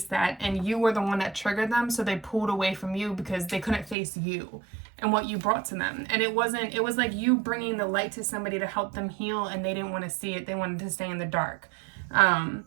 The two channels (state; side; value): drops out; left; at 4.0 s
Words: that, and you were the one that triggered them, so they pulled away from you because they couldn't face you and what you brought to them. And it was like you bringing the light to somebody to help them heal, and they didn't want to see it. They wanted to stay in the dark.